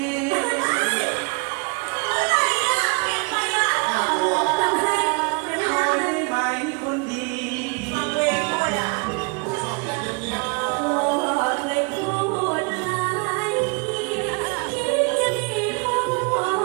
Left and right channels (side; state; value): left; quieter; 32.0 dB